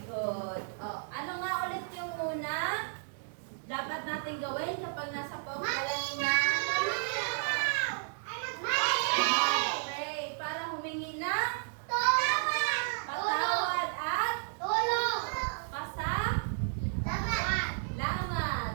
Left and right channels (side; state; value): left; silent; digital silence